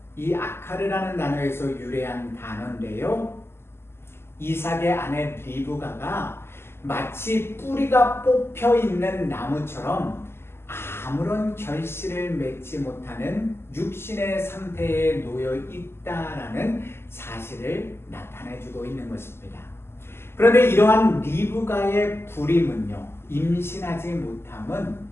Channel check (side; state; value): right; late; 0.12 ms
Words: 이 아카르라는 단어에서 유래한 단어인데요, 이삭의 아내 리브가가 마치 뿌리가 뽑혀 있는 나무처럼 아무런 결실을 맺지 못하는 육신의 상태에 놓여 있다라는 사실을 나타내주고 있는 것입니다. 그런데 이러한 리브가의 불임은요, 임신하지 못함은